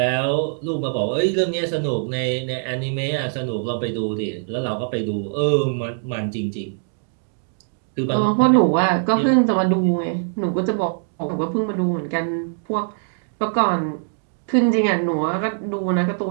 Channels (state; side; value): silent; left; digital silence